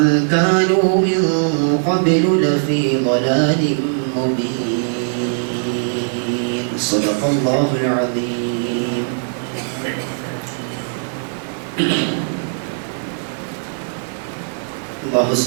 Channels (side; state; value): left; silent; digital silence